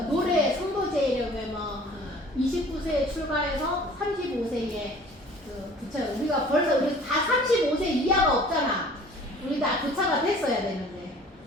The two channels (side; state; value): both; normal; correlation 0.49